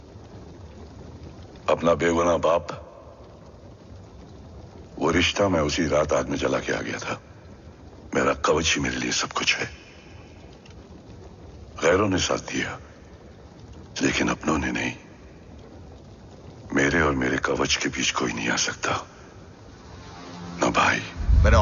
अपना बेगुनाह बाप। वो रिश्ता मैं उसी रात आग में जला के आ गया था। मेरा कवच ही मेरे लिए सब कुछ है। गैरों ने साथ दिया, लेकिन अपनों ने नहीं। मेरे और मेरे कवच के बीच कोई नहीं आ सकता। ना भाई। मैंने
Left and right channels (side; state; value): both; identical; correlation 1.00